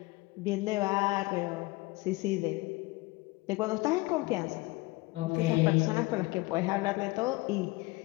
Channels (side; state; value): right; quieter; 22.3 dB